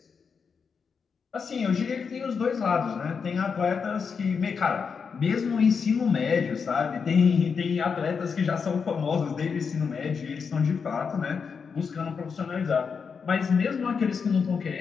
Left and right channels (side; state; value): right; quieter; 5.9 dB